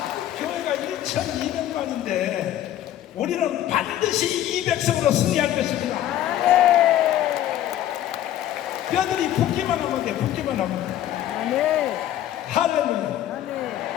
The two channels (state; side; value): quieter; right; 12.3 dB